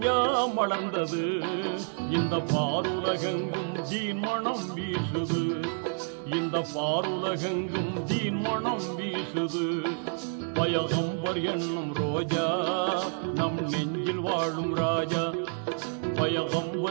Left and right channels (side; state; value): left; silent; 59 dB below the other